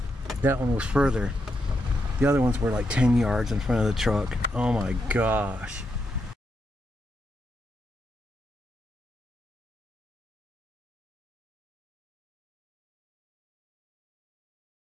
That one was further. The other ones were like 10 yards in front of the truck. Oh my gosh.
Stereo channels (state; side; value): normal; both; correlation 0.82